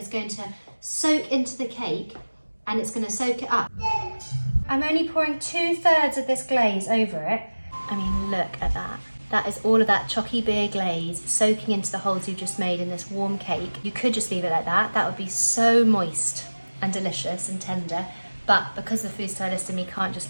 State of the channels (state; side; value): inverted; both; correlation -1.00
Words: going to soak into the cake and it's going to soak it up. I'm only pouring 2/3 of this glaze over it. I mean, look at that. That is all of that Chocky beer glaze soaking into the holes you've just made in this warm cake. You could just leave it like that. That would be so moist and delicious and tender. But because the food stylist in me can't